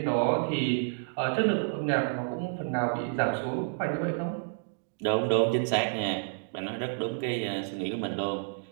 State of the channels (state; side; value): silent; left; digital silence